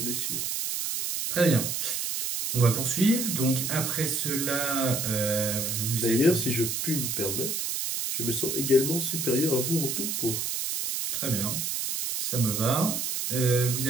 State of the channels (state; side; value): noise; right; hiss, 1 dB below the sound